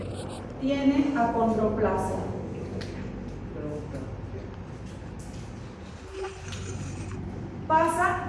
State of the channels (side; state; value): both; identical; correlation 1.00